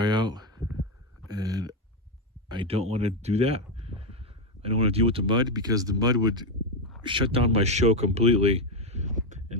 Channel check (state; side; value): normal; both; correlation 0.06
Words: out. And I don't want to do that. I don't want to deal with the mud, because the mud would shut down my show completely. And